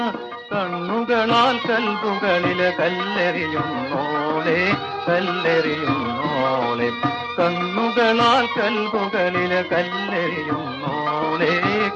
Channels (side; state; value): both; identical; correlation 1.00